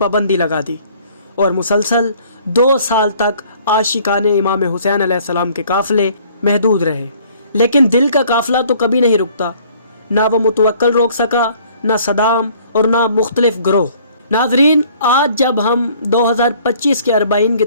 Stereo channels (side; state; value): both; inverted; correlation -0.57